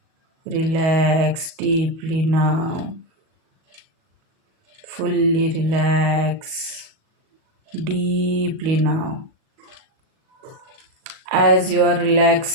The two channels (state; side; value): late; left; 37 ms